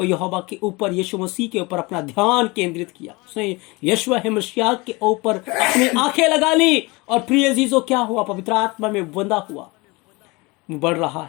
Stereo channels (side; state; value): right; quieter; 24.9 dB